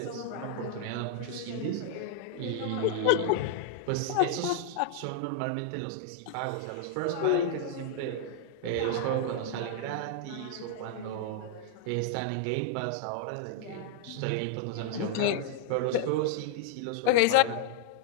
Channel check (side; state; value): both; different; correlation -0.01